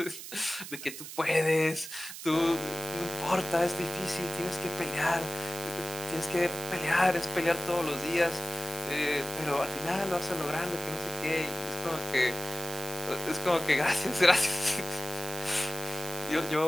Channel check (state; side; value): noise; right; hiss, 10 dB below the sound